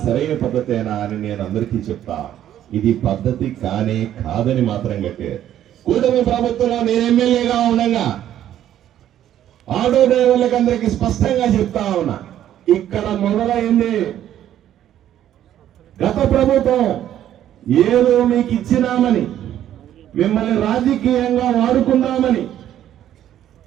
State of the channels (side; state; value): left; quieter; 11.4 dB